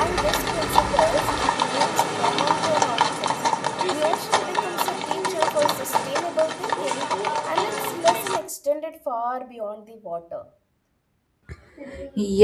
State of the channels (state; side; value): identical; both; correlation 1.00